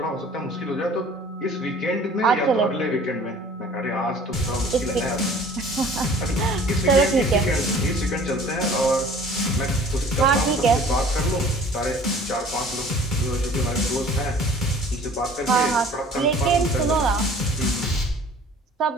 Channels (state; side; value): normal; both; correlation 0.49